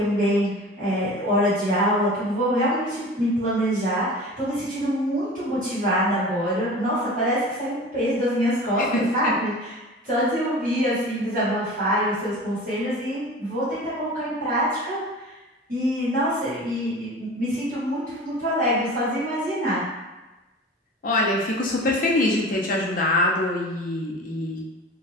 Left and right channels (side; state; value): both; normal; correlation 0.37